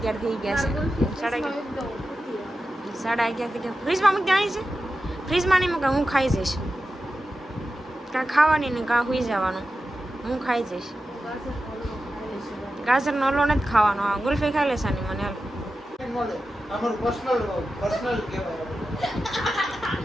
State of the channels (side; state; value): both; normal; correlation 0.92